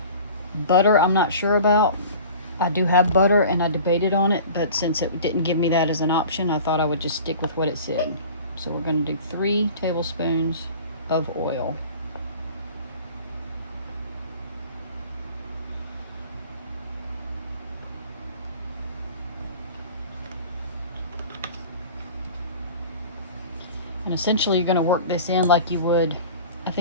Butter, I'm not sure about. I do have butter and I debated on it, but since it didn't give me that as an option, I thought I would just stick with what it said. So we're going to do 3 tablespoons of oil. And essentially you're going to work this in like you would, I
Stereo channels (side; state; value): both; inverted; correlation -0.42